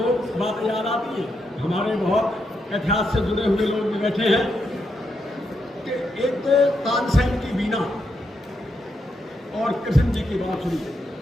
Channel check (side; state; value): both; normal; correlation 0.81